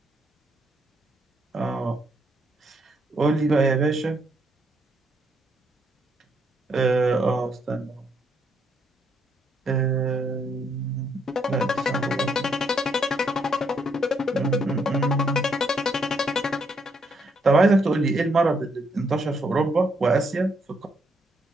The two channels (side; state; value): both; normal; correlation 0.74